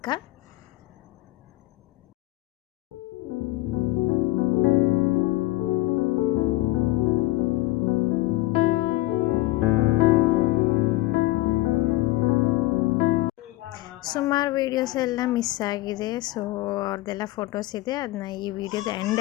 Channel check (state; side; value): quieter; right; 18.2 dB